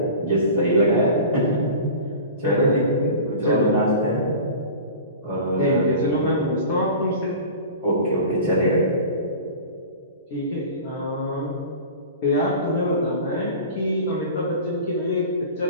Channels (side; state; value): both; inverted; correlation -0.37